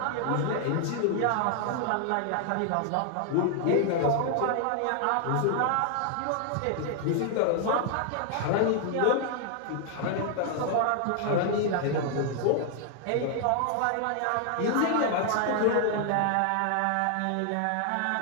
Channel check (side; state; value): both; different; correlation 0.00